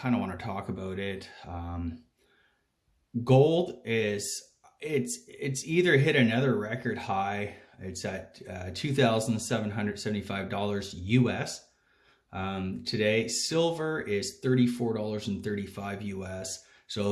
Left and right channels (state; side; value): identical; both; correlation 1.00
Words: of want to talk about it. Gold it's either hit another record high. It's at $2,775 US. Today, silver is $34.35 US.